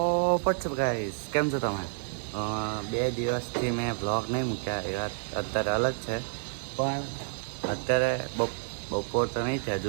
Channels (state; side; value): silent; left; digital silence